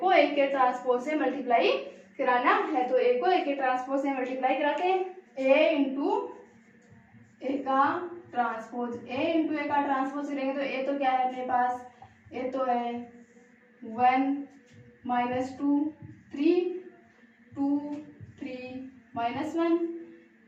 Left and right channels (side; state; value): both; identical; correlation 1.00